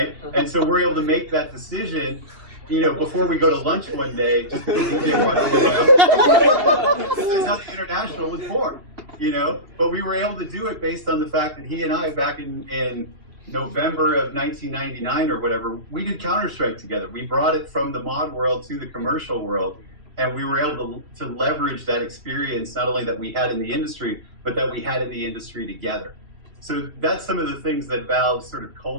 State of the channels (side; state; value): left; late; 2.7 ms